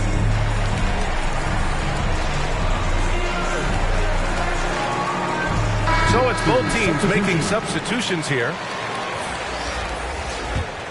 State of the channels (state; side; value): identical; both; correlation 1.00